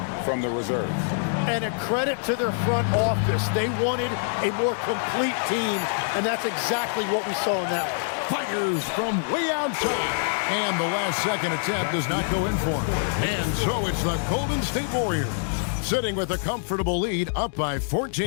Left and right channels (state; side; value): silent; right; digital silence